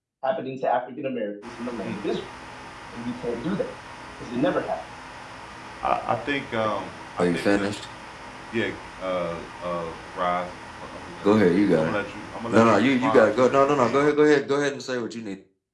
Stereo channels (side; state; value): both; identical; correlation 1.00